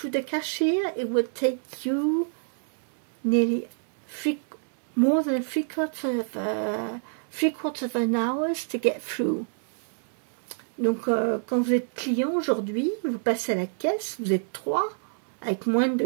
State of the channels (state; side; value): silent; left; digital silence